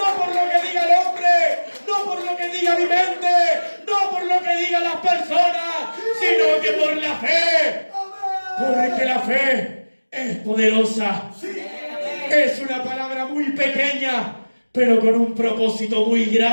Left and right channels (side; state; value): both; inverted; correlation -1.00